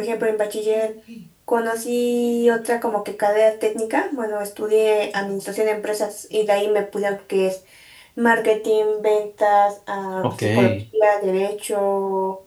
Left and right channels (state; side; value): identical; both; correlation 1.00